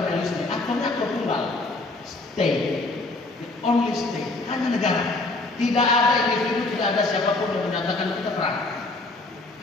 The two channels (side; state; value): right; quieter; 3.1 dB